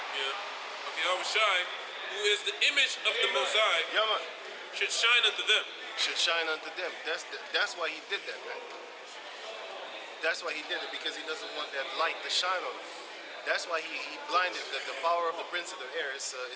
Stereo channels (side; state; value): both; identical; correlation 1.00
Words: who is the image of the Most High, should shine unto them. should shine unto them. That's why he did that, man. That's why he did it, because he doesn't want that light to shine on them. That's why he blinded the power of the prince of the air is